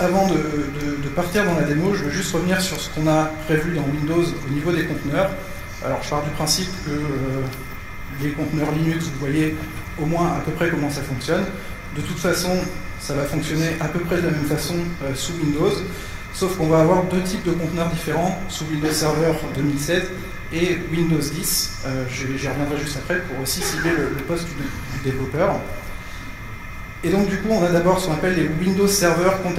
avant de partir dans la démo, je veux juste revenir sur ce qu'on a prévu dans Windows au niveau des conteneurs. Alors je pars du principe que les conteneurs Linux, vous voyez au moins à peu près comment ça fonctionne. De toute façon, ça va fonctionner à peu près de la même façon sous Windows, sauf qu'on va avoir 2 types de conteneurs différents sous Windows Server 2016 et Windows 10. J'y reviendrai juste après pour aussi cibler le poste du développeur. Et donc du coup, on a d'abord ce qu'on appelle les Windows Server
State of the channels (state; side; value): identical; both; correlation 1.00